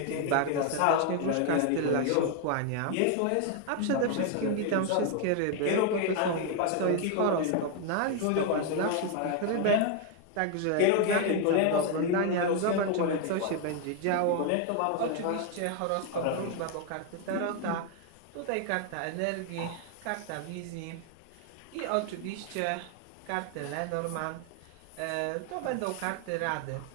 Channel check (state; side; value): different; both; correlation 0.01